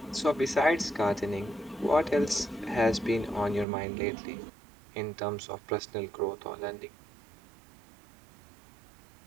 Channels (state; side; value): drops out; left; at 3.7 s